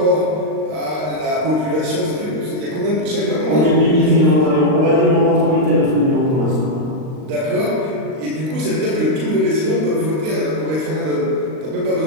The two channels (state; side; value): late; left; 39 ms